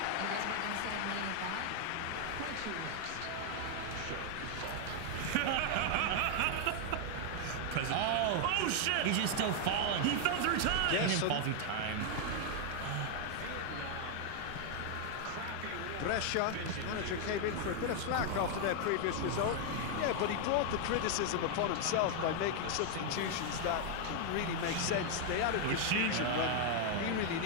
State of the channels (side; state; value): both; different; correlation 0.00